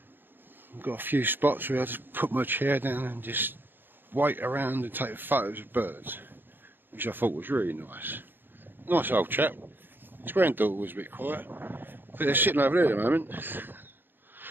We've got a few spots where I just put my chair down and just wait around and take photos of birds, which I thought was really nice. Nice old chap. His granddaughter was a bit quiet, but they're sitting over there at the moment.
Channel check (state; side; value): late; left; 0.097 ms